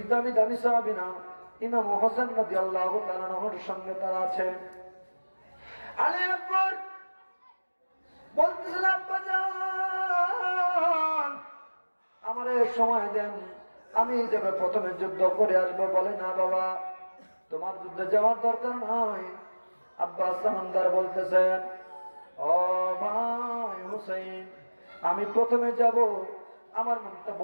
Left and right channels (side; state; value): both; inverted; correlation -1.00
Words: দামি দামি সাহাবীরা ইমাম হোসেন রাদিয়াল্লাহু তাআলার সঙ্গে তারা আছে। আলী আকবর বলতেছেন, আব্বা জান আমারে সময় দেন, আমি যাবে প্রথমে যুদ্ধ করে আসবো। বলে, না বাবা, তোমার যুদ্ধে যাওয়ার দরকার নয়। আব্বাস সামানদার বলতেছেন, ও ভাই হুসাইন, আমি প্রথমে যাব, আমার মনটা